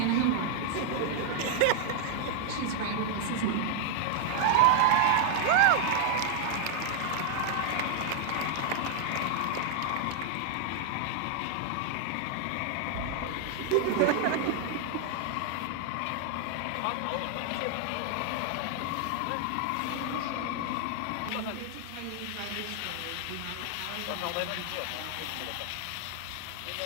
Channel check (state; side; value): different; both; correlation 0.00